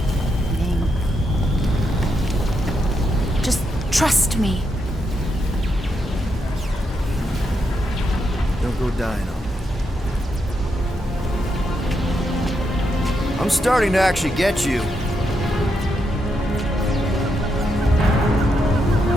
Ming. Just trust me. Don't go dying on me. I'm starting to actually get you.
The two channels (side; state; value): both; normal; correlation 0.82